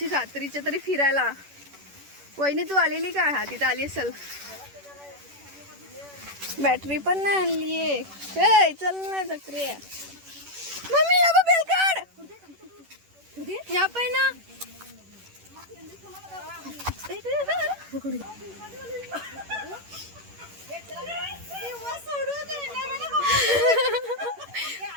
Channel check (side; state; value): left; late; 11 ms